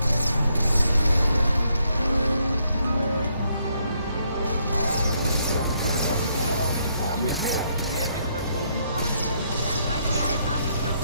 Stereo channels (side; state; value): both; inverted; correlation -0.74